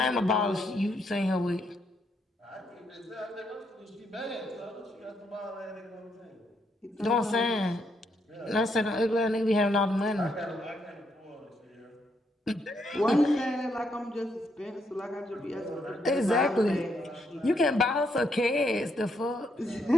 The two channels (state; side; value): normal; both; correlation 0.76